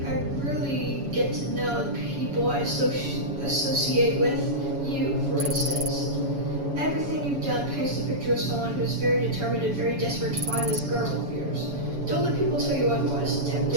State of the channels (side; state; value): left; late; 7.1 ms